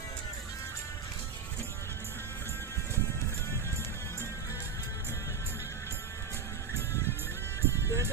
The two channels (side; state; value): left; quieter; 6.0 dB